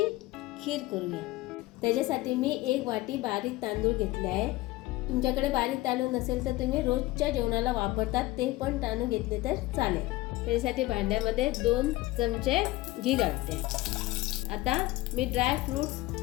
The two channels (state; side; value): quieter; right; 18.8 dB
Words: खीर करूया। त्याच्यासाठी मी 1 वाटी बारीक तांदूळ घेतले आहे। तुमच्याकडे बारीक तांदूळ नसेल तर तुम्ही रोजच्या जेवणाला वापरतात ते पण तांदूळ घेतले तर चालेल। त्याच्यासाठी भांड्यामध्ये 2 चमचे घी घालते। आता मी ड्राय फ्रूट्स